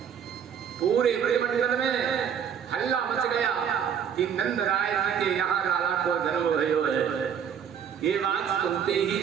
पूरे ब्रह्मांड में हल्ला मच गया कि नंदराय जी के यहाँ लाला को जन्म भयो है। ये बात सुनते ही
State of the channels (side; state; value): left; quieter; 8.1 dB